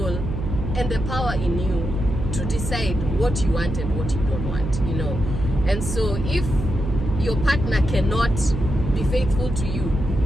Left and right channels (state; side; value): noise; right; hum, 4 dB below the sound